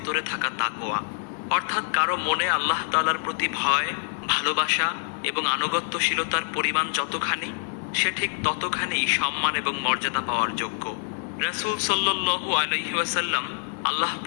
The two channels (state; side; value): silent; right; 58 dB below the other